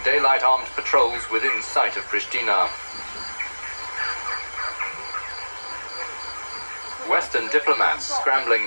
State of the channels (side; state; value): both; inverted; correlation -1.00